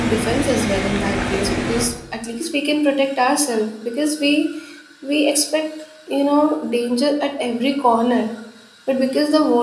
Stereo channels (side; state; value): both; identical; correlation 1.00